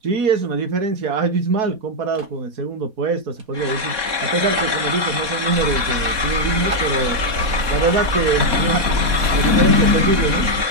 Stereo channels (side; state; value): left; late; 4.2 ms